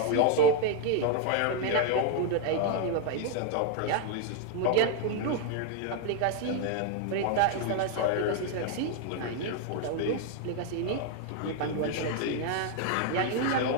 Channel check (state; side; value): different; both; correlation 0.01